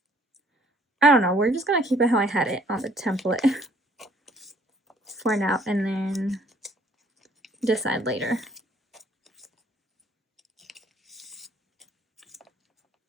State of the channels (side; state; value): both; normal; correlation 0.61